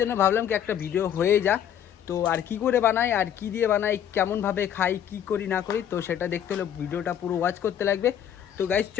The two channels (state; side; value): quieter; right; 9.7 dB